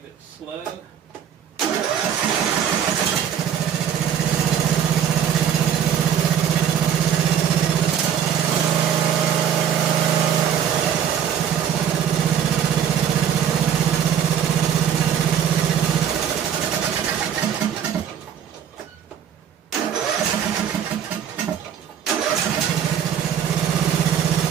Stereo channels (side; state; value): left; quieter; 8.9 dB